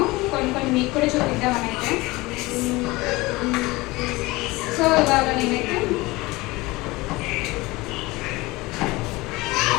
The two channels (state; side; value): quieter; right; 21.6 dB